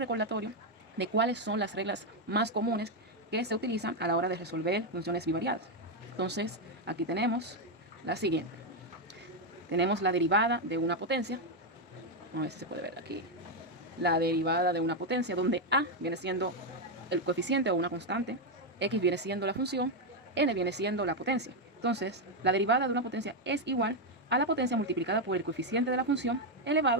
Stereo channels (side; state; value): both; normal; correlation 0.03